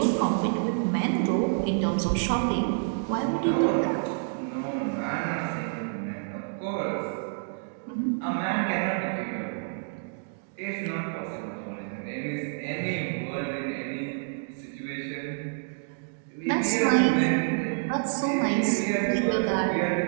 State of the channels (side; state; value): left; silent; digital silence